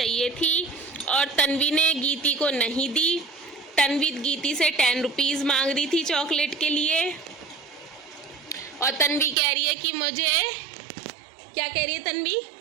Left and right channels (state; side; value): drops out; left; at 9.3 s